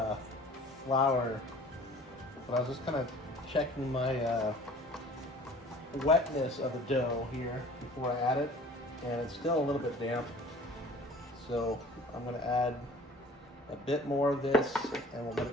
flour, but I was just kind of checking my wetness of the dough here before I add it, and it's still a little bit damp. So I'm going to add a bit more of this, and we'll let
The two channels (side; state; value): both; normal; correlation 0.47